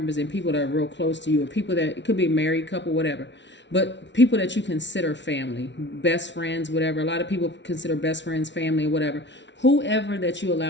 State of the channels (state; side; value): late; right; 0.52 ms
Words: and people that are real close to you, or people that, it could be a married couple, whatever. But people that you consider family, best friends, whatever. A lot of people consider best friends family or whatever. Whoever that you